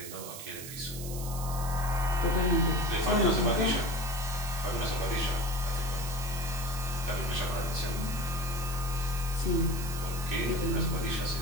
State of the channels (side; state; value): right; noise; hiss, 10 dB below the sound